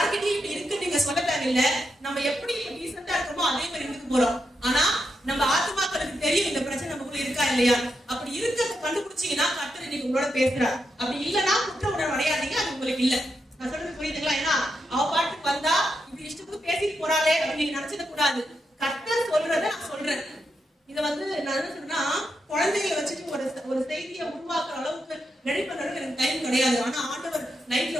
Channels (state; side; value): normal; both; correlation 0.84